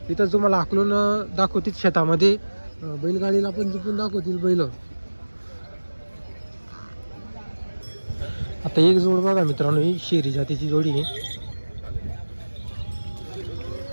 इथं तुम्हाला आकलून दाखवतील शेतामध्ये, बैलगाडीला पण जिंकून दाखवतील बैल. आता एक जोड बघा मित्रांनो, ही शेरी जातीची जोडी आहे.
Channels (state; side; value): inverted; both; correlation -1.00